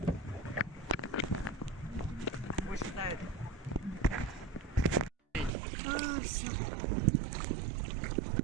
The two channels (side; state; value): left; drops out; at 5.5 s